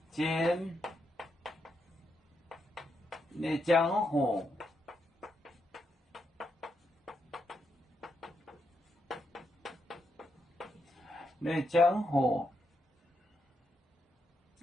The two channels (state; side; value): normal; both; correlation 0.81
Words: 尖的江河，那江河，